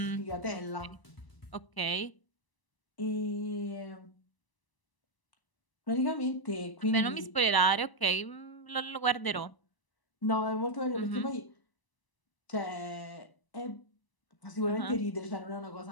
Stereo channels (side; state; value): right; late; 1.0 ms